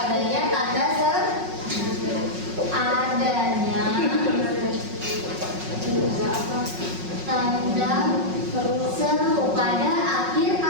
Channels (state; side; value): late; left; 5.4 ms